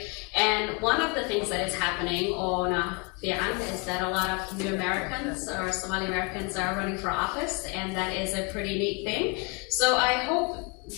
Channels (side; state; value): right; quieter; 31.1 dB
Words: And one of the things that is happening on Fi'an is that a lot of new Americans or Somali Americans are running for office, and that is a pretty neat thing. So I hope